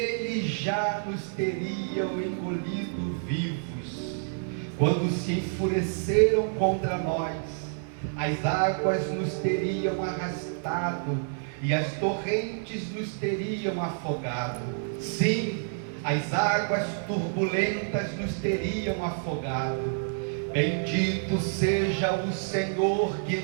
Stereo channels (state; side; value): silent; left; 55 dB below the other